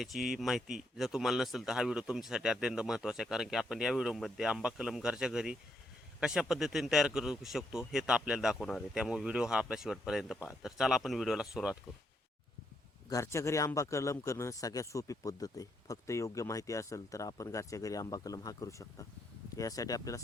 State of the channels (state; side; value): normal; both; correlation 0.76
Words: माहिती जर तुम्हाला नसेल तर हा व्हिडिओ तुमच्यासाठी अत्यंत महत्त्वाचा आहे. कारण की आपण या व्हिडिओमध्ये आंबा कलम घरच्या घरी कशा पद्धतीने तयार करू शकतो हे तर आपल्याला दाखवणार आहे. त्यामुळे व्हिडिओ हा आपल्या शेवटपर्यंत पहा. तर चला आपण व्हिडिओला सुरुवात करू. घरच्या घरी आंबा कलम करणं सगळ्यात सोपी पद्धत आहे. फक्त योग्य माहिती असेल तर आपण घरच्या घरी आंबा कलम हा करू शकता. यासाठी आपल्याला